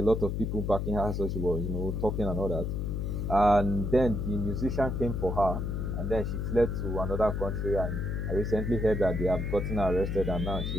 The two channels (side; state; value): left; noise; hum, 1 dB below the sound